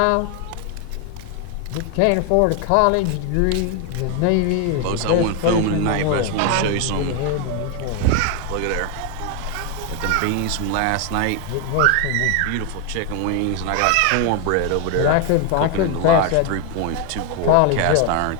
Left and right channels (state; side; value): different; both; correlation 0.01